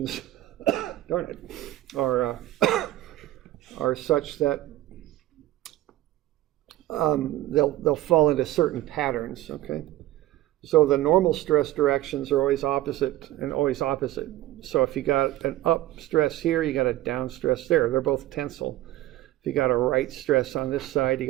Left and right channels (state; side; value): quieter; left; 15.5 dB